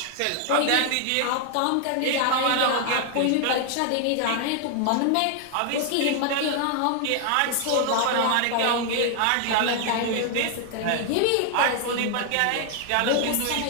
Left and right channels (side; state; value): both; different; correlation 0.00